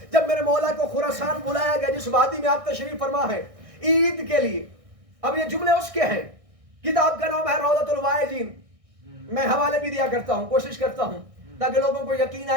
جب میرے مولا کو خراسان بلایا گیا جس وادی میں آپ تشریف فرما ہے عید کے لیے, اب یہ جملے اس کے ہیں, کتاب کا نام ہے روضۃ الواعظین. میں حوالے بھی دیا کرتا ہوں, کوشش کرتا ہوں تاکہ لوگوں کو یقین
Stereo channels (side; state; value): left; late; 1.6 ms